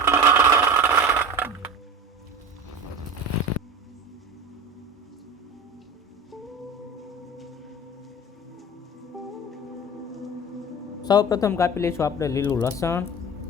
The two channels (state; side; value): normal; both; correlation 0.34